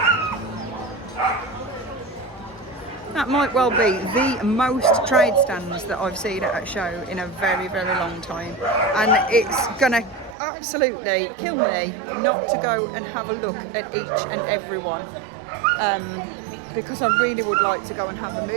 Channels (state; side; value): drops out; left; at 10.4 s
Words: That might well be the most trade stands that I've seen at a show in a very, very long time. And it's gonna absolutely kill me not to go and have a look at each and every one. Because I really would like to go and have a